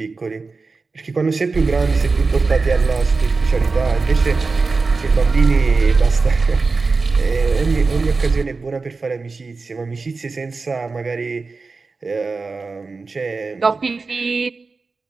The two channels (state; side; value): quieter; left; 4.1 dB